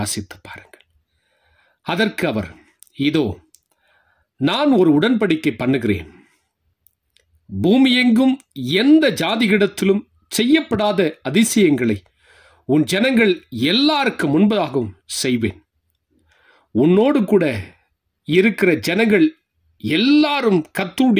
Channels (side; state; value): both; identical; correlation 1.00